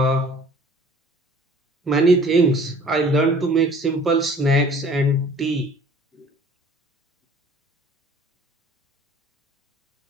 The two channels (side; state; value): both; normal; correlation 0.51